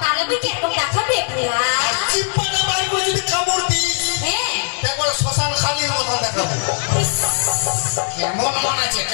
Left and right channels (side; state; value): right; silent; digital silence